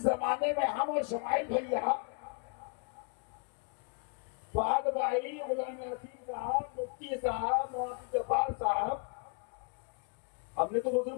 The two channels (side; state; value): right; quieter; 38.2 dB